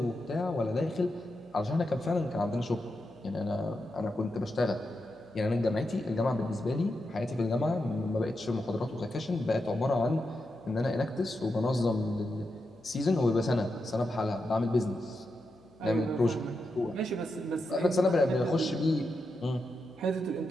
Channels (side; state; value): left; noise; hum, 29 dB below the sound